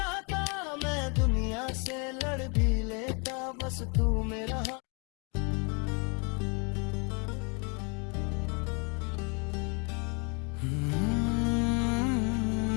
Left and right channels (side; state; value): right; quieter; 33.7 dB